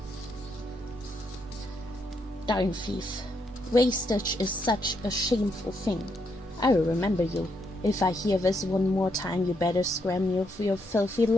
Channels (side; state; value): both; normal; correlation 0.77